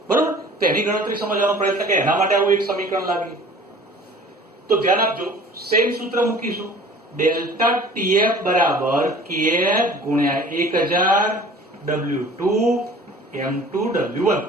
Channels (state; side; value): normal; both; correlation 0.46